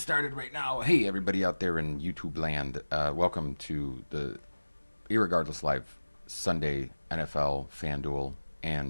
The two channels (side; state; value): both; inverted; correlation -1.00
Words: right now. Hey, everybody out there in YouTube land. Welcome to the Irregardless Live Sunday NFL, Fanduel,